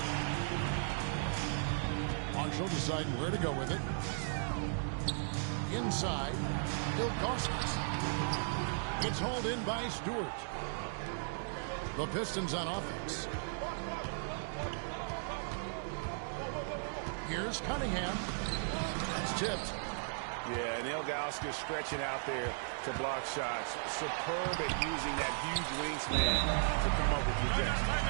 Marshall deciding where to go with it. Inside. Ilgauskas. It's hauled in by Stewart. The Pistons on offense. Here's Cunningham. That's tipped. Yeah, and Ilgauskas stretching out there to block shots. Superb at using that huge wingspan to come up with rejection.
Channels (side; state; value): left; silent; digital silence